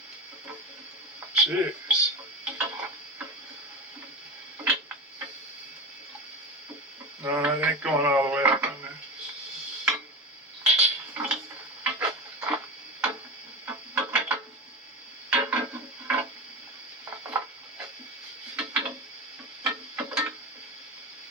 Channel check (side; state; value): both; normal; correlation 0.24